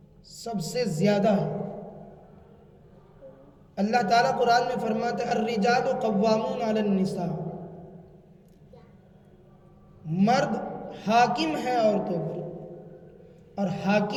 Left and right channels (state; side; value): identical; both; correlation 1.00